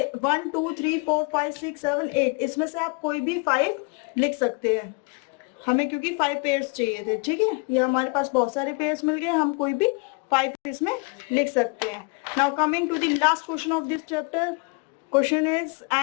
1 2 3 4 5 6 7 8, इसमें से आप कोई भी 5 लिख सकते हैं, हमें क्योंकि 5 पेयर्स चाहिए थे, ठीक है। ये हमारे पास बहुत सारे पेयर्स मिल गए, हम कोई भी 5 इसमें लिख सकते हैं। Now coming to the last question of this chapter, question is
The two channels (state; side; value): quieter; right; 31.3 dB